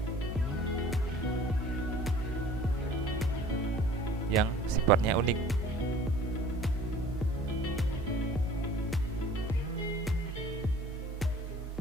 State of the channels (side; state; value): both; normal; correlation 0.48